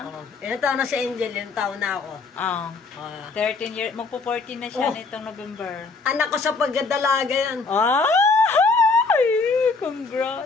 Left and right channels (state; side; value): quieter; right; 4.1 dB